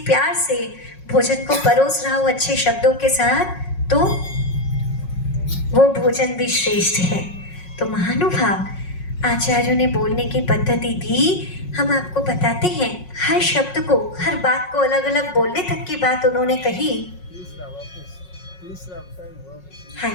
प्यार से भोजन को परोस रहा हो अच्छे शब्दों के साथ, तो वो भोजन भी श्रेष्ठ है। तो महानुभाव, आचार्यों ने बोलने की पद्धति दी। हम आपको बताते हैं, हर शब्द को, हर बात को अलग अलग बोलने तक की बात उन्होंने कही।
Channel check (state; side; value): late; right; 5.5 ms